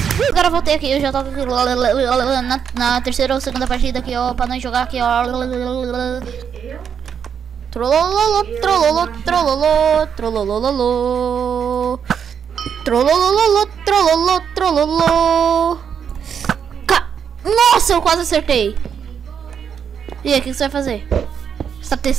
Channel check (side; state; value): left; quieter; 7.6 dB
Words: Agora eu voltei aqui, eu já tô aqui na terceira ou segunda partida aqui, ó, pra nós jogar aqui, ó. Trolololo. Nossa, eu quase acertei. E aí, o que você vai fazer? Você tá